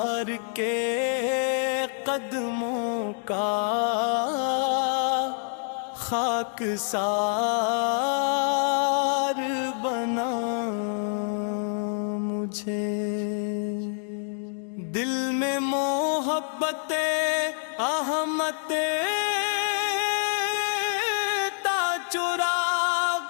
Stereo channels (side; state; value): right; silent; 60 dB below the other